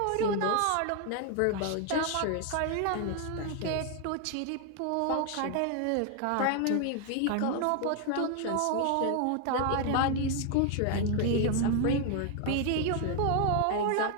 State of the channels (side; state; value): both; different; correlation 0.00